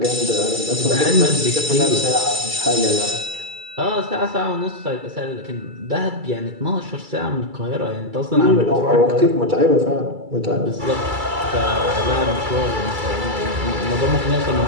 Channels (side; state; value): left; late; 2.3 ms